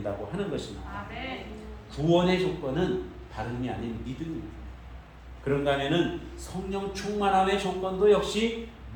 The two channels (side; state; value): both; identical; correlation 1.00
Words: 하는 것입니다. 구원의 조건은 다름이 아닌 믿음입니다. 그런가 하면은 성령 충만함의 조건도 역시